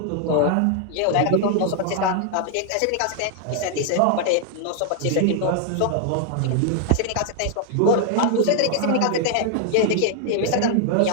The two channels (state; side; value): different; both; correlation 0.00